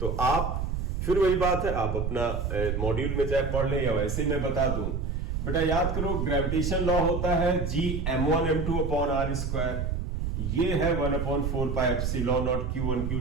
तो आप फिर वही बात है, आप अपना मॉड्यूल में चाहे पढ़ लें या वैसे ही मैं बता दूं। बेटा याद करो, ग्रेविटेशन लॉ होता है G m1m2/r²। ये है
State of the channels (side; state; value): right; noise; rumble, 2 dB below the sound